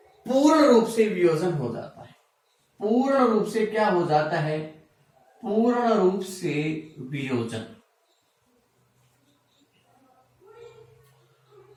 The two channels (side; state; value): both; identical; correlation 1.00